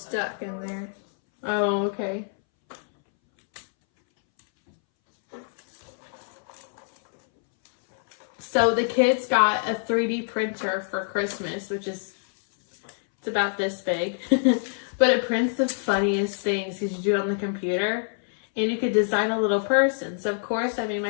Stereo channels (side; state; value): right; silent; 61 dB below the other